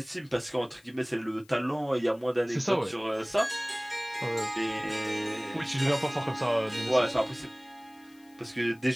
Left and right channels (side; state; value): left; noise; hiss, 29 dB below the sound